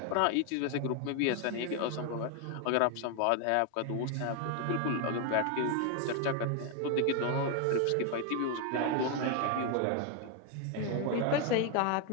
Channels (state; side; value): different; both; correlation 0.01